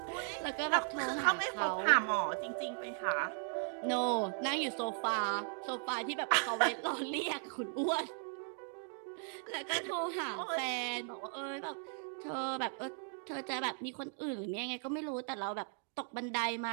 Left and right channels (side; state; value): left; silent; 53 dB below the other